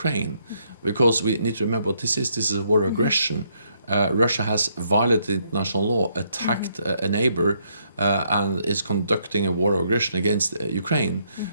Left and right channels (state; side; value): inverted; both; correlation -0.73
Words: because we need to remember what this is. This is a war of aggression. Russia has violated international law, attacked a neighbor, and is conducting a war of aggression against Ukraine.